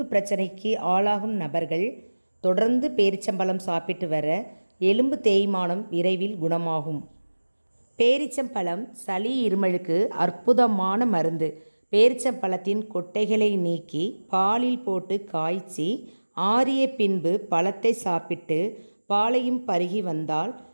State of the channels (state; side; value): inverted; both; correlation -1.00